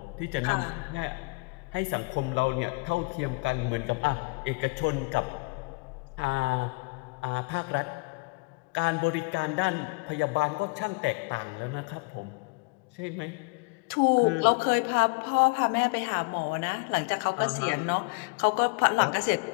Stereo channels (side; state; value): right; quieter; 29.6 dB